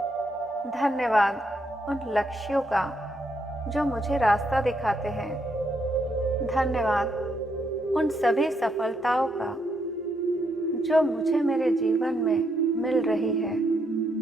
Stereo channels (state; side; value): normal; both; correlation 0.76